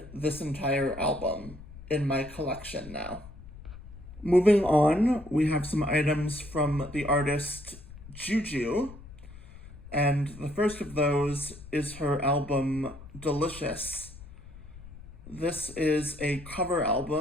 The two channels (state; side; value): noise; left; rumble, 16 dB below the sound